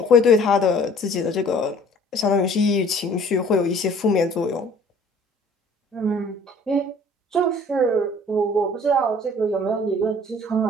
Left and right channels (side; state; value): both; normal; correlation 0.52